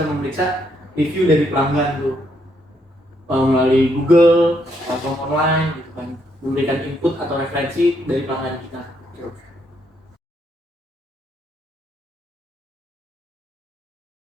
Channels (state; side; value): normal; both; correlation 0.74